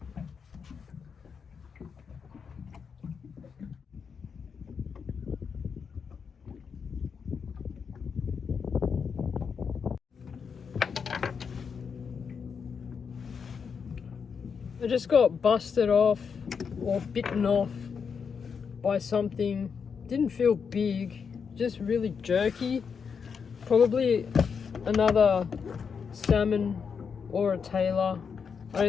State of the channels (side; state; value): right; quieter; 6.2 dB